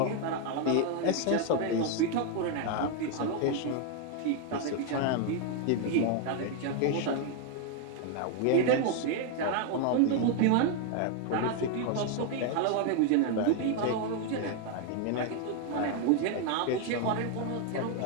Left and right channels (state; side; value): different; both; correlation 0.01